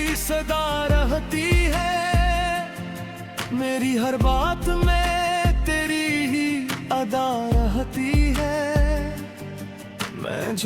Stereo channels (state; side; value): identical; both; correlation 1.00